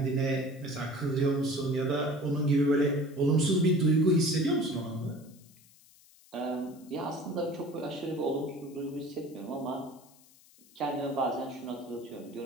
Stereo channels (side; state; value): left; noise; hiss, 26 dB below the sound